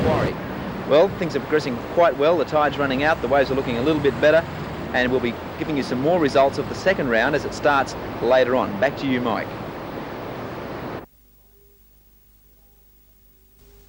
Well, things are progressing quite well. The tide's running out, the waves are looking a little bit better, and we'll be giving you some more results of the second round as it starts later on. Back to you, Mike.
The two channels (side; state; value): both; identical; correlation 1.00